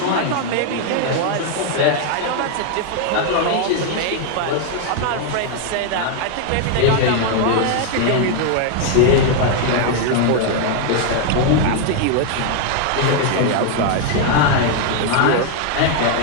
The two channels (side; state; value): both; different; correlation 0.00